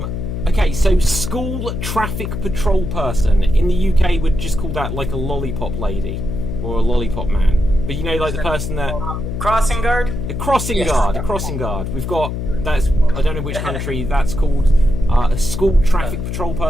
Okay, so school traffic patrol person. In the UK, we'd just call that like a lollipop lady or a lollipop man. But you know, like the person that Crossing guard. a crossing guard. A crossing guard. We've got that's. I don't know which country that's called. A school traffic patrol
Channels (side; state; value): left; noise; hum, 4 dB below the sound